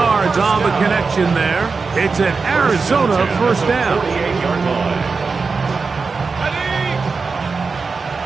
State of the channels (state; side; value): quieter; left; 4.6 dB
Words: on the connection there. It's an Arizona 1st down. 48-yard line.